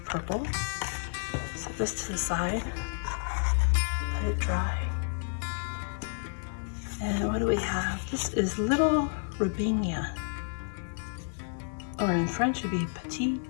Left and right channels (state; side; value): silent; right; digital silence